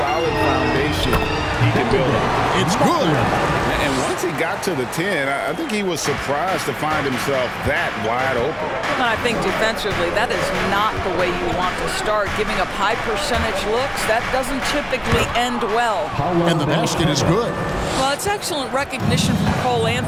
foundation he can build on. It's good. And once he got to the 10, I think he was surprised to find himself that wide open. And I think defensively, that is not the way you want to start. Giving up high percentage looks, that doesn't typically end well. And the basket is good. Well, it's excellent recognition from Cole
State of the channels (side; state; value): both; identical; correlation 1.00